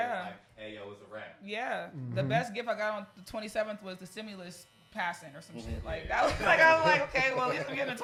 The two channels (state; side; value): identical; both; correlation 1.00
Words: Like, hey, yo, it's a wrap. Yeah. The best gift I got on the 27th was the stimulus passing or some shit. Like that was like I was like, okay, well at least I'm getting a